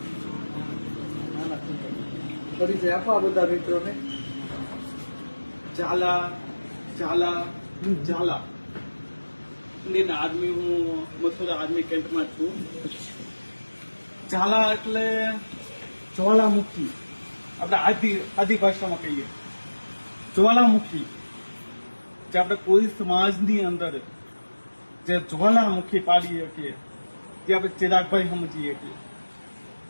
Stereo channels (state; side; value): inverted; both; correlation -1.00